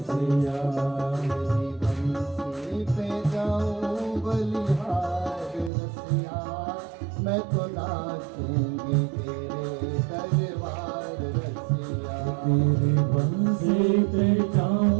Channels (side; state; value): left; drops out; at 5.7 s